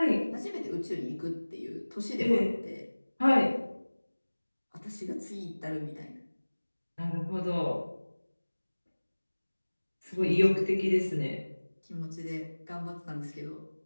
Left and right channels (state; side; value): inverted; both; correlation -1.00